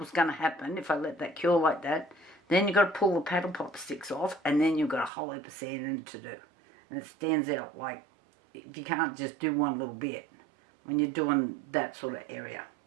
going to happen if I let that cure like that, then you've got to pull the paddle pop sticks off, and then you've got a whole heap of sanding to do. And it stands out like, if you can't just do one little bit when you're doing that sort of area.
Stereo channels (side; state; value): left; drops out; at 5.1 s